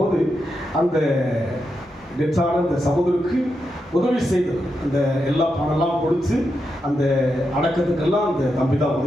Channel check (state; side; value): normal; both; correlation 0.86